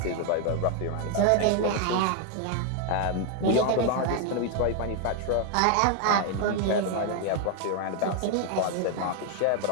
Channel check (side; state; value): both; different; correlation 0.01